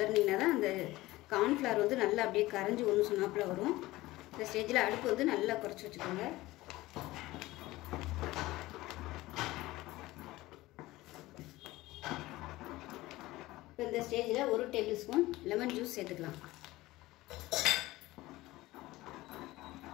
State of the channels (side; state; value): right; quieter; 18.4 dB